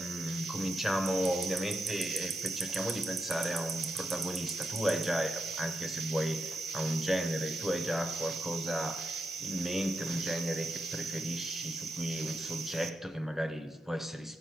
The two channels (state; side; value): normal; both; correlation 0.85